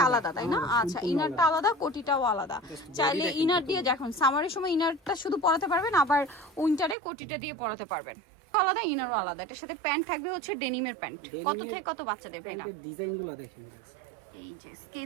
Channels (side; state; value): left; drops out; at 7.0 s